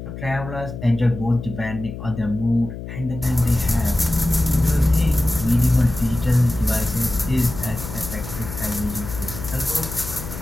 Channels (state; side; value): noise; left; hum, 10 dB below the sound